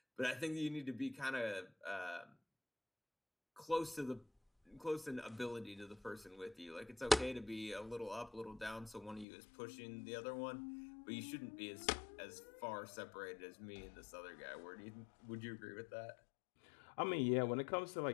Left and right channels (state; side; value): drops out; right; at 9.2 s